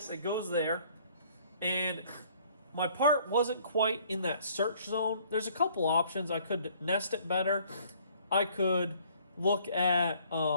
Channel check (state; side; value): inverted; both; correlation -0.59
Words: it goes there, and my part wasn't quite in that search zone. There's a couple options. I could nest it better, I could look at